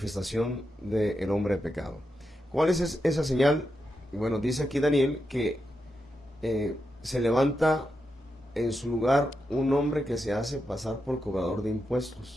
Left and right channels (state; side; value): normal; both; correlation 0.86